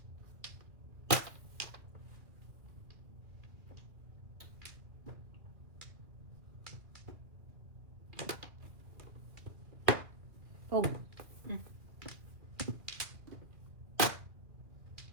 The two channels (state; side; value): late; left; 2.2 ms